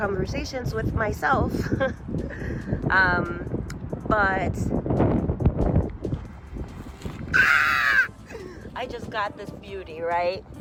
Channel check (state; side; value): identical; both; correlation 1.00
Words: with myself. But I just got this beauty, right?